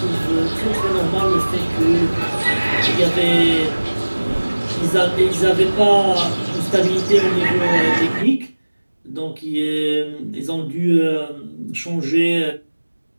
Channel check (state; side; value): inverted; both; correlation -1.00